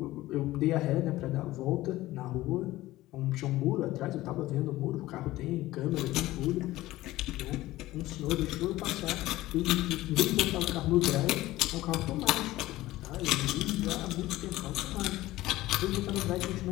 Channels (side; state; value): right; quieter; 16.9 dB